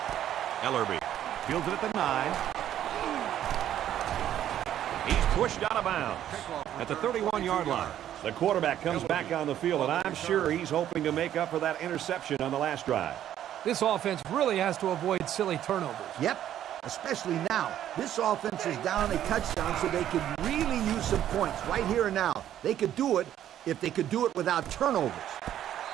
Ellerby fields it at the 9. He's pushed out of bounds at the 31-yard line. The quarterback comes back on the field, and I'm sure he's hoping to make up for that interception on the last drive. This offense really has to avoid silly turnovers. Yep, especially now. This offense is down a touchdown, so they could really use some points right here and now. They could do it if they could do it without turnovers.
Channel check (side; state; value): left; quieter; 11.2 dB